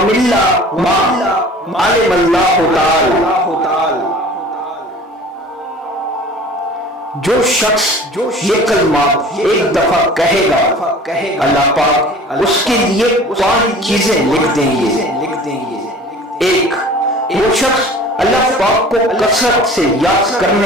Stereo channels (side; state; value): both; normal; correlation 0.44